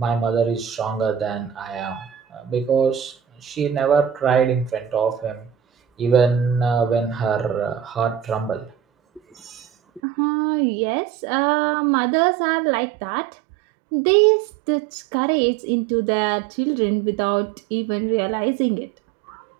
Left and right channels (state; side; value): drops out; left; at 10.0 s